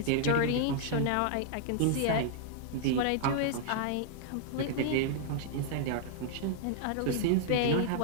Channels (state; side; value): different; both; correlation -0.01